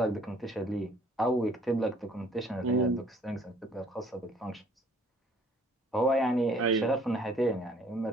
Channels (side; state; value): both; normal; correlation 0.58